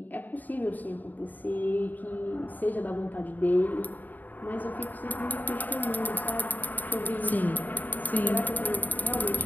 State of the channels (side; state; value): right; late; 0.085 ms